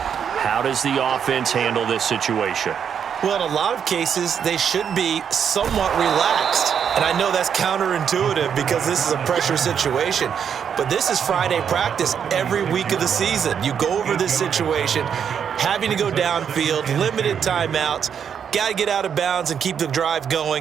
does the offense handle this situation? Well, in a lot of cases, they should be somewhat relaxed. And I know that's counterintuitive because this is a pressure situation. But this is Friday practice every week of the season. You go over this situation, having to go downfield, limited timeouts, got to get out of bounds and keep the drive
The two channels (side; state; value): left; quieter; 7.8 dB